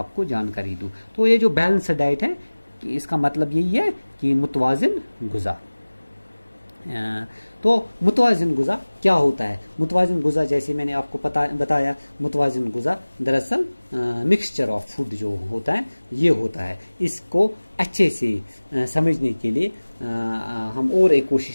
کو جانکاری دوں. تو یہ جو بیلنس ڈائٹ ہے اس کا مطلب یہی ہے کہ متوازن غذا. تو متوازن غذا کیا ہوتا ہے؟ متوازن غذا جیسے میں نے آپ کو بتایا، متوازن غذا دراصل مکسچر آف فوڈ جو ہوتا ہے یہ ہوتا ہے. اس کو اچھے سے سمجھنے کے لیے ہم اور ایک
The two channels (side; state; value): both; inverted; correlation -1.00